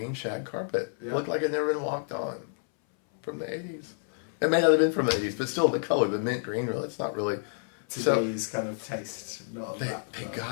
shag carpet. Yeah. It looked like it had never been walked on from the 80s. It may not have been from the 80s, but still the color, the mint green, really, it's not really... Today's kind of taste. They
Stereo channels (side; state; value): right; silent; 58 dB below the other